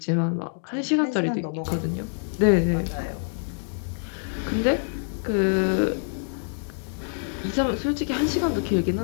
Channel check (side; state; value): right; silent; digital silence